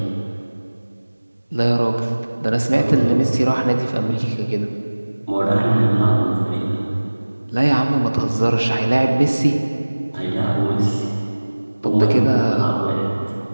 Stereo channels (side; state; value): both; inverted; correlation -1.00